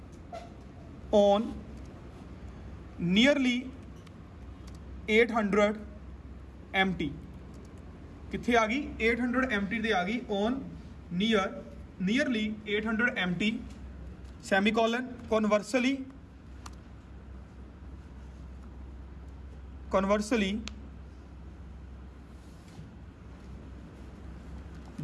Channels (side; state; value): both; identical; correlation 1.00